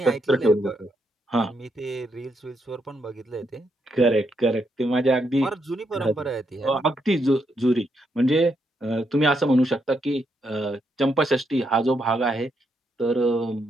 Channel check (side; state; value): both; normal; correlation 0.79